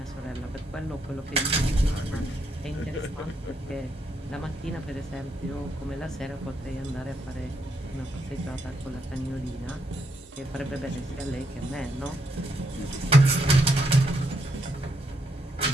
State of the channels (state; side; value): normal; both; correlation 0.77